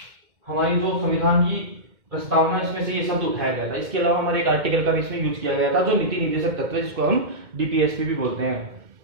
हमारी जो संविधान की प्रस्तावना इसमें से ये शब्द उठाया गया था। इसके अलावा हमारे एक आर्टिकल का भी इसमें यूज किया गया था जो नीति निर्देशक तत्व है, जिसको हम डीपीएसपी भी बोलते हैं।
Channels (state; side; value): late; left; 2.1 ms